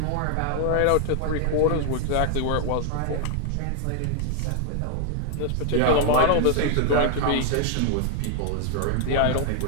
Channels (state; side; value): different; both; correlation 0.00